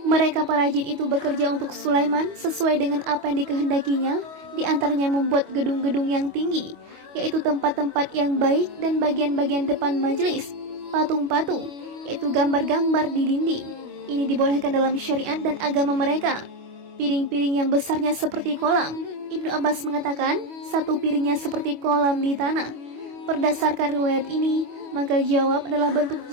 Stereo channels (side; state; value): left; late; 25 ms